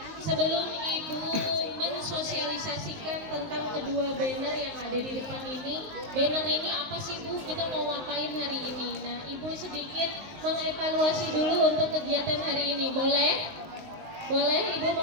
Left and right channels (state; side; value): late; left; 19 ms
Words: Sebelum Ibu mensosialisasikan tentang kedua banner yang ada di depan ini, banner ini apa sih Bu? Kita mau ngapain hari ini? Nah, Ibu sedikit mengevaluasi dulu untuk kegiatan hari ini, boleh? Boleh Ibu